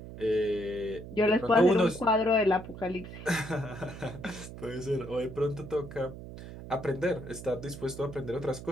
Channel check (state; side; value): noise; right; hum, 12 dB below the sound